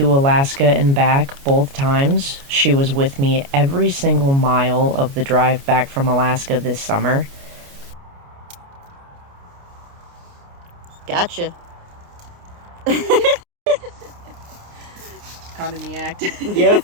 Alaska and back both times. She was with me every single mile of the drive back from Alaska this summer. Gotcha. Caught in the act. Yep.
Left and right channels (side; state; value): left; late; 29 ms